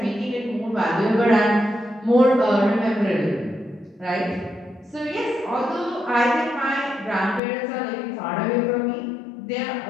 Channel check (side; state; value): right; drops out; at 7.4 s